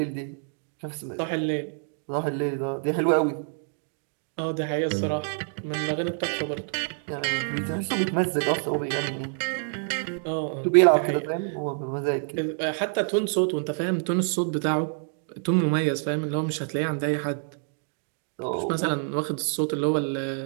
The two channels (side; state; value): left; silent; digital silence